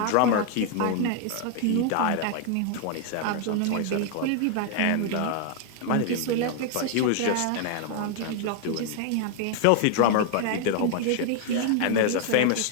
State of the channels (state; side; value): different; both; correlation 0.00